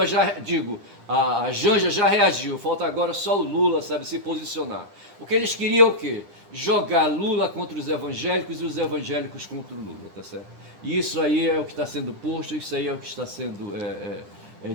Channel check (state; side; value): late; left; 10 ms